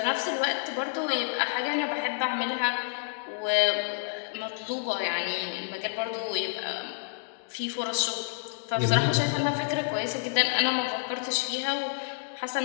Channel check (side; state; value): right; silent; 59 dB below the other